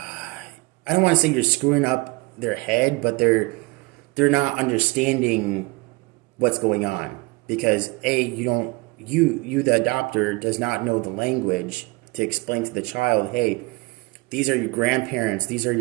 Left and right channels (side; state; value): left; quieter; 25.5 dB